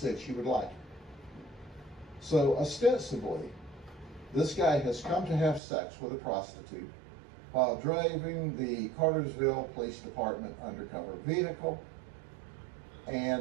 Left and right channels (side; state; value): left; drops out; at 5.6 s